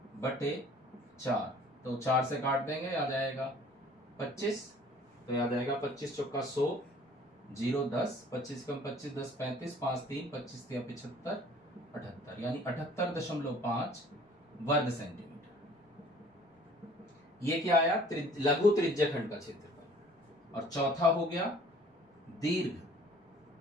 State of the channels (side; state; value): both; normal; correlation 0.53